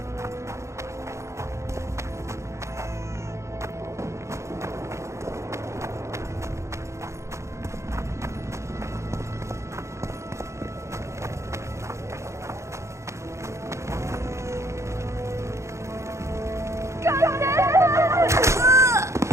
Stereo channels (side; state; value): left; late; 0.14 ms